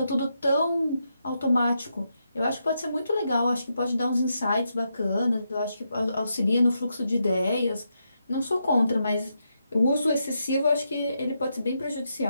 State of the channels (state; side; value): inverted; both; correlation -0.83